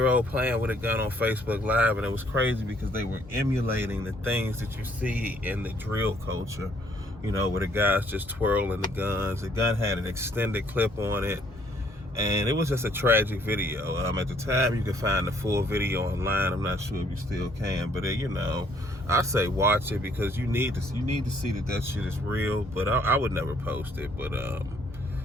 playing with a gun on Facebook Live, and it was crazy because they were emulating the things that you see in the drill culture, you know, where the guys just twirling the guns. The gun had an extended clip on it, and it was just a tragic video. At the time, you could find the full video online. I'm not sure if you still can, but you know, I say watch it because you need to see that shit is real. But I would never post it. But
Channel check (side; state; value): both; normal; correlation 0.64